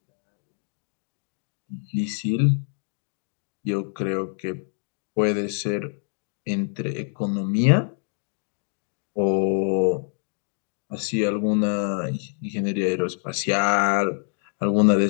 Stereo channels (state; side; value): silent; right; 60 dB below the other